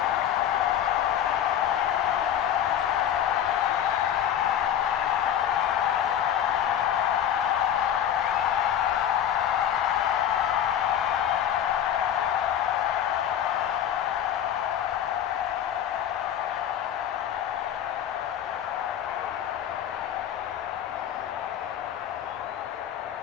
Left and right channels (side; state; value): right; quieter; 9.9 dB